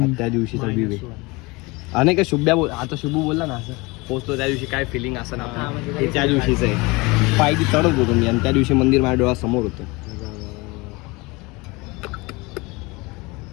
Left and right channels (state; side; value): quieter; right; 24.8 dB